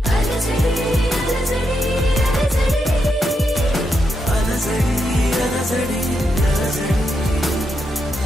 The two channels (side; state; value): both; normal; correlation 0.83